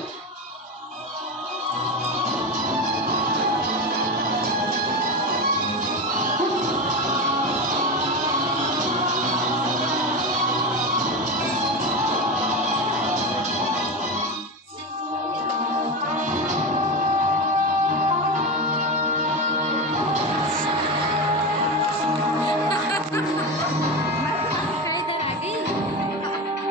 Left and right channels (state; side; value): normal; both; correlation 0.19